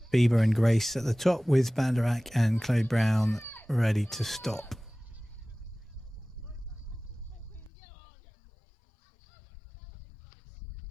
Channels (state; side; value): drops out; right; at 7.7 s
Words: Bieber and Grace at the top with Banderak and Chloe Brown ready to stop.